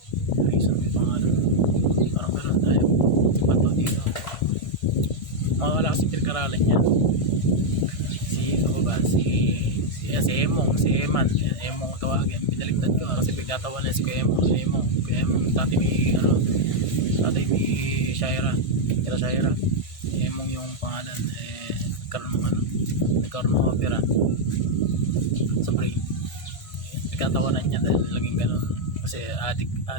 yung pangalan, parang meron tayo si Bato dito, mawala kasi pinag-aralan niya. Si Emong tawagin, binaligtad ko kasi pagkatawan niya si Emong dati may Shaira, Emong yung pangalan, nagkaroon ng opera sa brain. Nagkatawanan niya dahil laging ganun kasi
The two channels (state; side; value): late; right; 1.5 ms